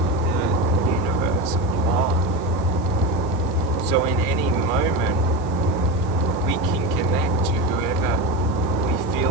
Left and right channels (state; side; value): noise; left; hiss, 24 dB below the sound